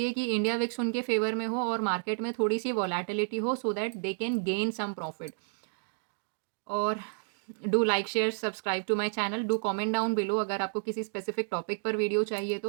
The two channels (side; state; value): left; silent; digital silence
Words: कि इंडिया विक्स उनके फेवर में हो और मार्केट में थोड़ी सी वॉलेटिलिटी हो, so that they can gain some profit. और do like share subscribe to my channel, do comment down below अगर आपको किसी स्पेसिफिक टॉपिक पर वीडियो चाहिए